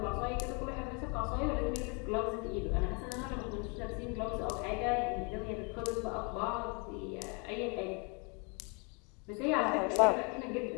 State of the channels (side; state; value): right; quieter; 33.8 dB